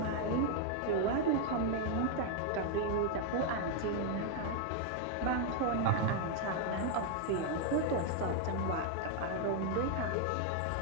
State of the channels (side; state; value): both; different; correlation 0.00